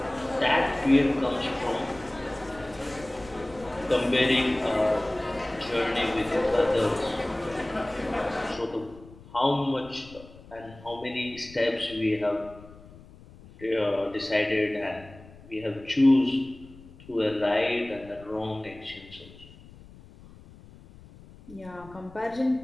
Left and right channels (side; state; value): left; noise; rumble, 20 dB below the sound